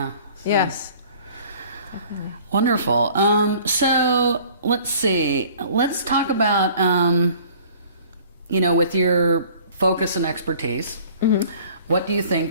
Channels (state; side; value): inverted; both; correlation -0.51